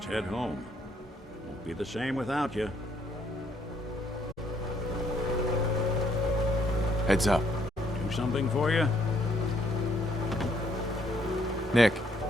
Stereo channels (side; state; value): both; normal; correlation 0.68